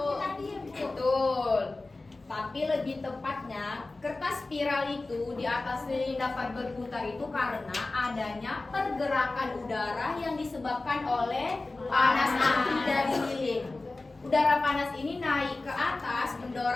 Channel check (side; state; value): right; quieter; 3.2 dB